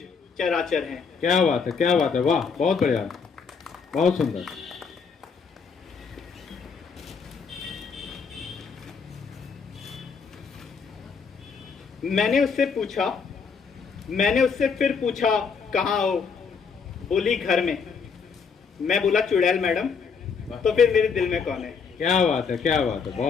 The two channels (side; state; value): right; quieter; 5.7 dB